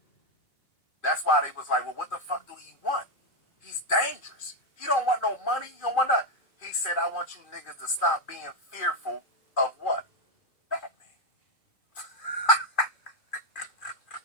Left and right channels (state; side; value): late; right; 2.4 ms